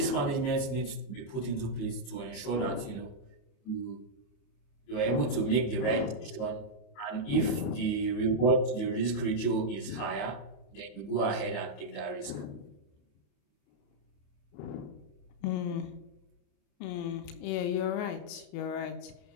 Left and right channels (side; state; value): right; late; 28 ms